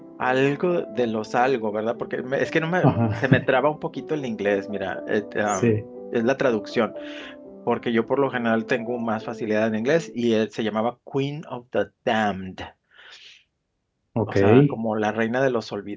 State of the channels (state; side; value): identical; both; correlation 1.00